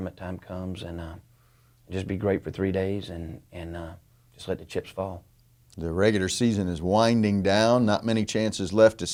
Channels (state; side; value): identical; both; correlation 1.00